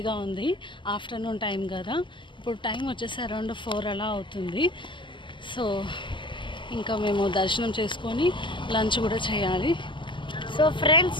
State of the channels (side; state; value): right; late; 0.24 ms